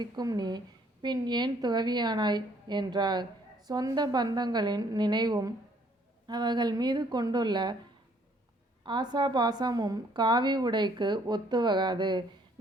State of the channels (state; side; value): normal; both; correlation 0.64